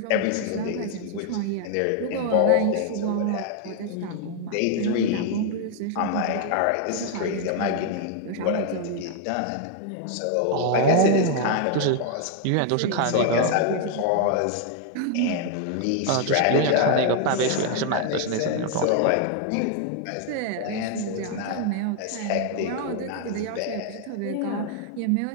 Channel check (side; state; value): both; different; correlation 0.00